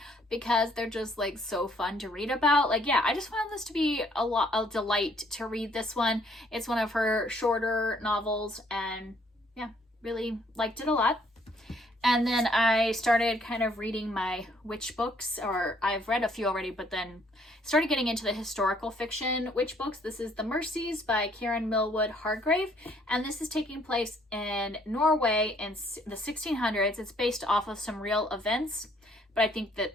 because they're just like so fun to read about. Like, yeah, I just found this to be a delight to read this one. It's one of her shorter novels, and yeah, really liked it a lot. And then I started kind of reading my witch books, or I've read a few already, but then started getting into the historical fiction witch books. This is The Mercies by Karen Millwood Hargrave, and this is taking place in Norway in the 1600s. It's based off of some real events, but I think that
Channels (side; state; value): both; normal; correlation 0.65